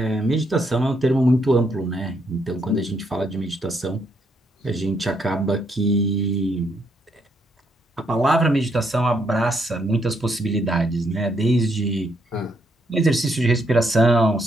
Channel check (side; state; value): both; normal; correlation 0.75